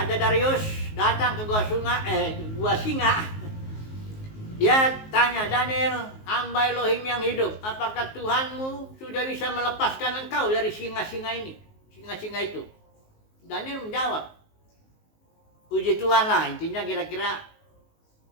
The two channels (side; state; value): right; late; 19 ms